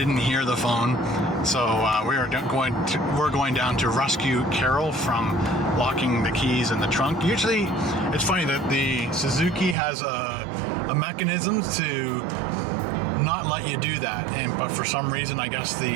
hear the phone. So we're going down to rescue Carol from locking the keys in the trunk. Usually, it's funny that the Suzuki has a mechanism to not let you do that, but for some reason, I guess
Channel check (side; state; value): left; drops out; at 9.8 s